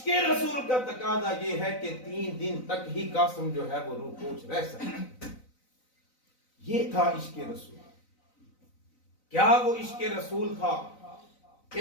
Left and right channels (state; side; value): late; right; 3.9 ms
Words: رسول کا تقاضا یہ ہے کہ 3 دن تک ہی قاسم جو ہے وہ روح پوش رہ سکتا۔ یہ تھا عشق رسول۔ کیا وہ عشق رسول تھا،